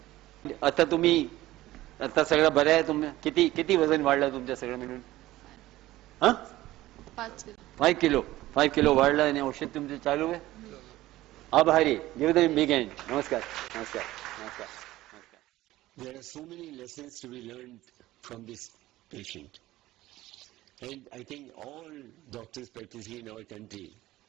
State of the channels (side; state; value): left; quieter; 16.5 dB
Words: आता सगळं बरं आहे तुम्ही किती वजन वाढलं तुमच्या सगळं मिळून? 5 किलो वाढलं आणि औषध तुमचं चालू आहे. आभारी. Give them big hand. नमस्कार. There are so many lessons to be learned from this patient, and I think all doctors practicing in our country